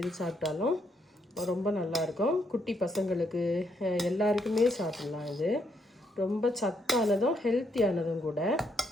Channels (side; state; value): both; normal; correlation 0.75